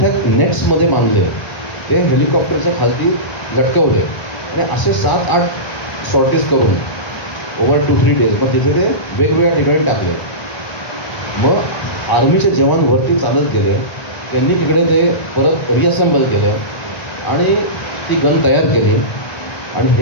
नेट्समध्ये बांधले, ते हेलिकॉप्टरच्या खालती लटकवले आणि असे 7-8 सॉर्टीज करून ओव्हर 2-3 डेज मग तिथे ते वेगवेगळ्या ठिकाणी टाकले. मग आर्मीचे जवान वरती चालत गेले, त्यांनी तिकडे ते परत रिअसेंबल केलं आणि ती गन तयार केली. आणि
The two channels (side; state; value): right; late; 1.0 ms